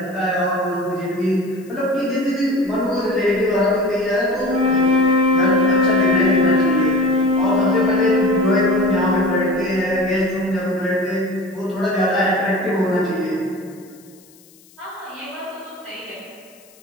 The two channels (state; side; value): noise; left; hiss, 28 dB below the sound